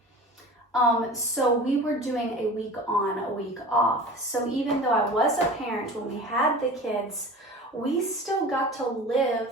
So we were doing a week on, a week off. So even though I was a parent when we had the kids, we still got to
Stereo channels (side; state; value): both; normal; correlation 0.37